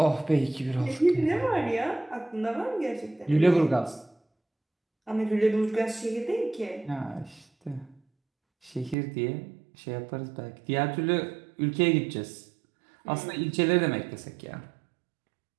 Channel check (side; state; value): left; drops out; at 9.0 s